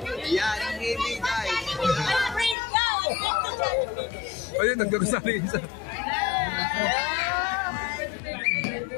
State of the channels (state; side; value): drops out; right; at 2.6 s